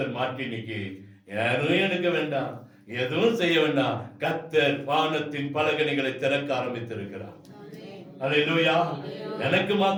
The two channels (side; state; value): both; identical; correlation 1.00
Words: மாற்றி இன்னைக்கு யாரும் எடுக்க வேண்டாம், எதுவும் செய்ய வேண்டாம். கர்த்தர் வானத்தின் பலகணிகளை திறக்க ஆரம்பித்திருக்கிறார். அல்லேலூயா. எனக்கு